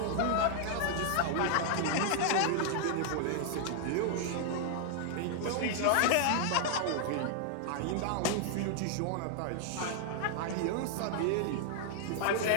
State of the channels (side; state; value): both; different; correlation -0.01